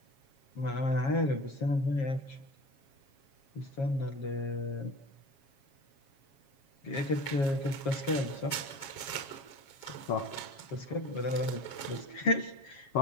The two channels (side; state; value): right; late; 7.3 ms